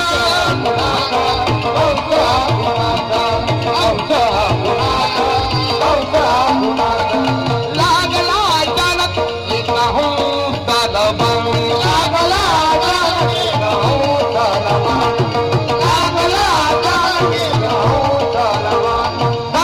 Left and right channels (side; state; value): both; identical; correlation 1.00